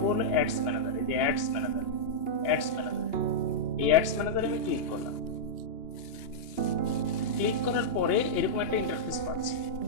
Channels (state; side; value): late; right; 2.9 ms